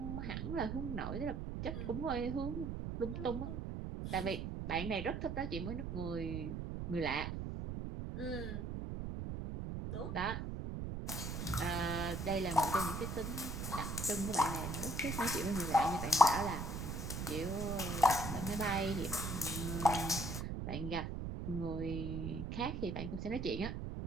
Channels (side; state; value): right; noise; rumble, 4 dB below the sound